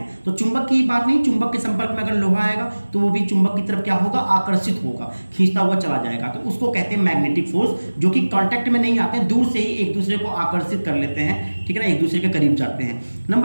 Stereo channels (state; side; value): inverted; both; correlation -1.00